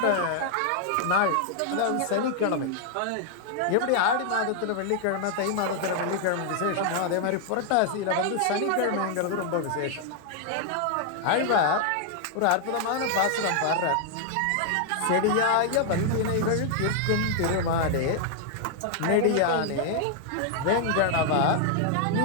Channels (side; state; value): both; different; correlation 0.00